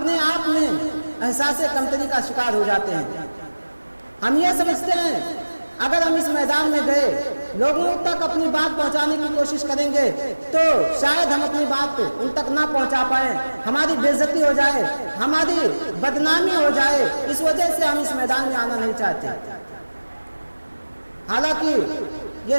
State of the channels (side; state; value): both; inverted; correlation -1.00